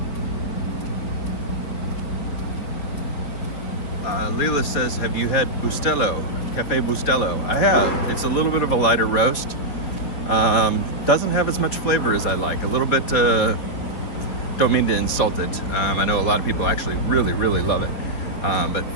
Leela says, have you had Bustelo, Cafe Bustelo? I have. It's a little bit of a lighter roast. Doesn't have as much flavor as I like. A little bit, don't mean to insult it. I know a lot of people actually really, really love it. But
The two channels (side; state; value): right; late; 4.7 ms